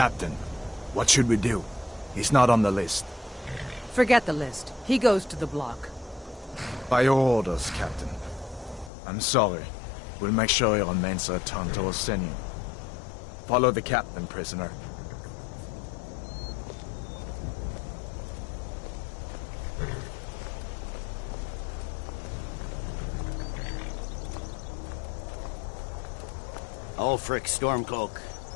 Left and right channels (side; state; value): right; drops out; at 8.9 s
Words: what should we do? He's not on the list. Forget the list. He goes to the block. By your orders, Captain. I'm sorry. We'll make sure he remains a return to Orsinium. Follow the captain, prisoner. Ulfric Stormcloak.